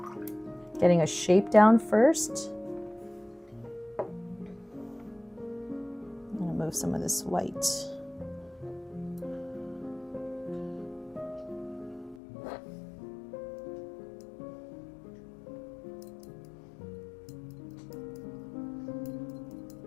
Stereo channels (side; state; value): right; drops out; at 12.2 s